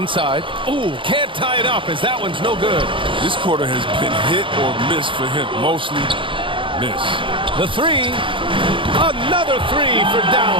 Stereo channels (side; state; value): left; late; 0.25 ms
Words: Ooh, can't tie it up as that one's no good. This quarter has been hit or miss for him. Mostly miss. The 3. Another 3 for